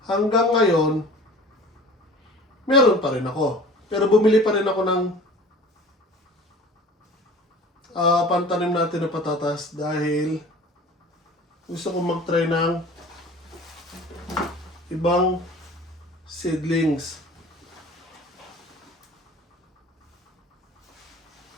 hanggang ngayon, meron pa rin ako. Pero bumili pa rin ako ng pantanim natin na patatas dahil gusto kong mag-try ng ibang seedlings.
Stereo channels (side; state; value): both; normal; correlation 0.43